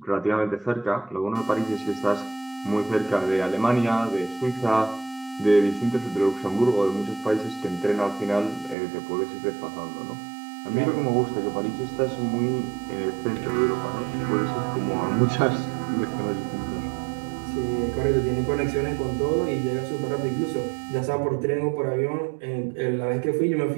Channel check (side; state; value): left; drops out; at 8.8 s